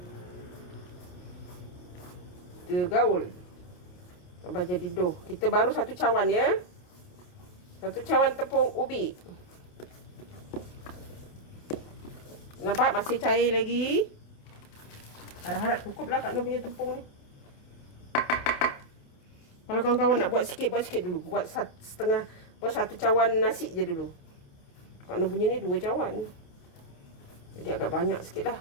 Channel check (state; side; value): late; right; 28 ms